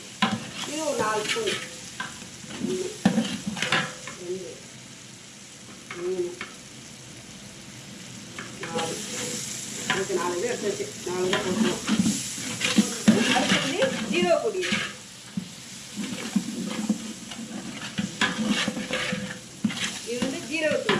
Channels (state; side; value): identical; both; correlation 1.00